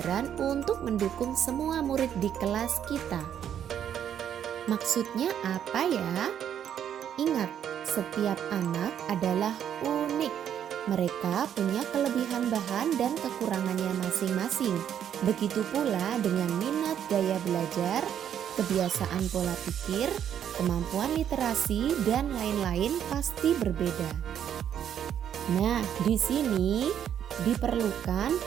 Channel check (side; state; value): left; quieter; 9.4 dB